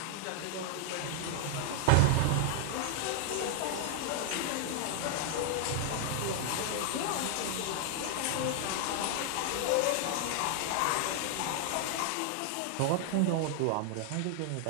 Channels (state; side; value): different; both; correlation 0.00